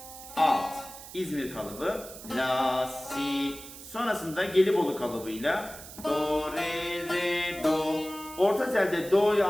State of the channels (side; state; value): right; noise; hiss, 15 dB below the sound